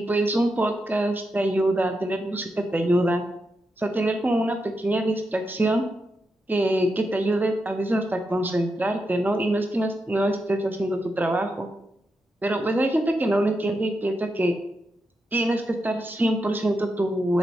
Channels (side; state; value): both; normal; correlation 0.86